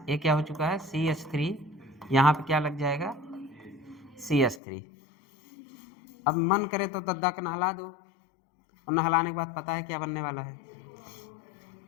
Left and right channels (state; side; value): drops out; right; at 4.6 s